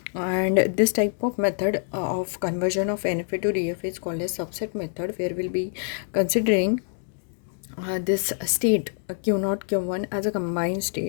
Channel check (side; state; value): right; silent; 60 dB below the other